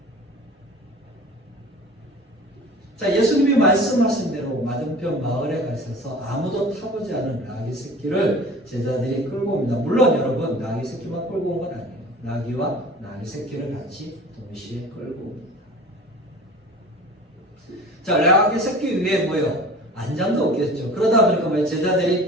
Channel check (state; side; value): normal; both; correlation 0.41